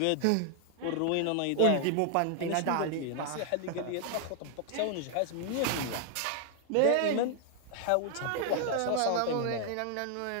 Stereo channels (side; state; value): both; different; correlation 0.00